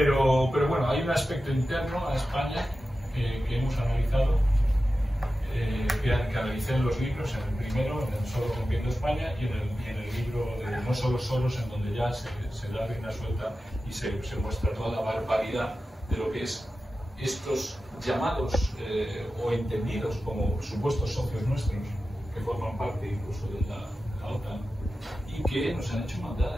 bueno, hay un aspecto interno a España que hemos analizado. Que analicé en los libros, en el primero, en el Soros rompiendo España, y en el libro de No solo Soros, en donde ya se da rienda suelta y se muestra toda la barbaridad de lo que es estos llamados o entendidos como supuestos socios nuestros, que forman parte incluso de la OTAN, y que nos han hecho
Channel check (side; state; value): both; normal; correlation 0.93